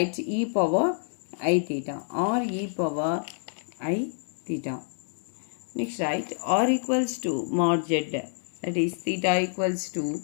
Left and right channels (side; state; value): right; silent; digital silence